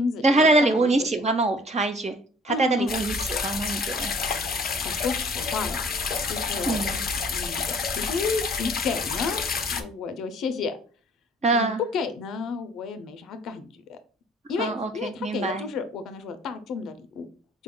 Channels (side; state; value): both; normal; correlation 0.54